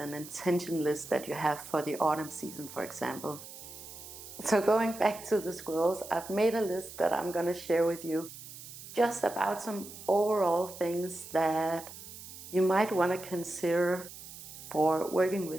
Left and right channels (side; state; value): right; noise; hiss, 14 dB below the sound